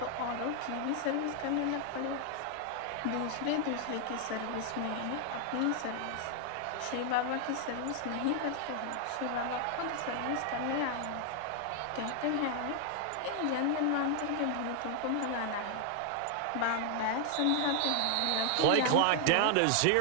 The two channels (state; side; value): different; both; correlation 0.00